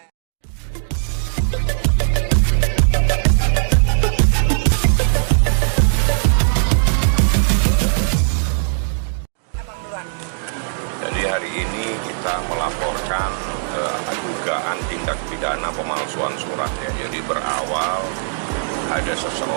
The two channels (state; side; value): silent; left; digital silence